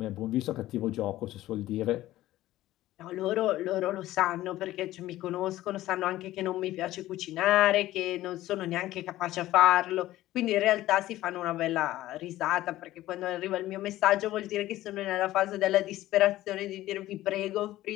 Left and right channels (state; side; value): quieter; right; 15.4 dB